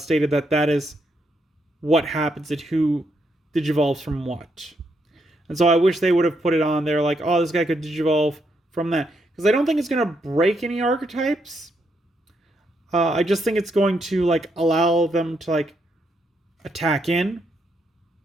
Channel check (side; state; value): both; normal; correlation 0.78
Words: that that is what happens and who Digivolves from what. And so I wish they would have put it on there like, oh, this guy could Digivolve from that. Because I don't think it's going to break any archetypes. I just think it's going to like allow them to like attack in.